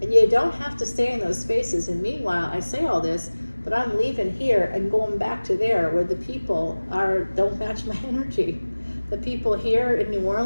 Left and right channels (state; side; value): inverted; both; correlation -1.00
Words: And you don't have to stay in those spaces. And meanwhile, I say all this, but I'm leaving here and going back to there where the people don't match my energy. The people here in New